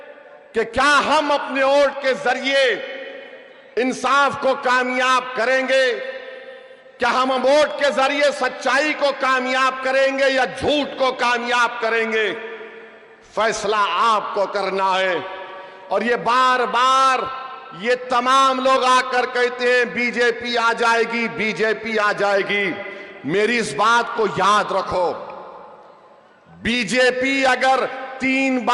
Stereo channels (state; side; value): identical; both; correlation 1.00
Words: कि क्या हम अपने वोट के जरिए इंसाफ को कामयाब करेंगे, क्या हम वोट के जरिए सच्चाई को कामयाब करेंगे या झूठ को कामयाब करेंगे। फैसला आपको करना है। और ये बार बार ये तमाम लोग आकर कहते हैं बीजेपी आ जाएगी, बीजेपी आ जाएगी। मेरी इस बात को याद रखो, बीजेपी अगर 3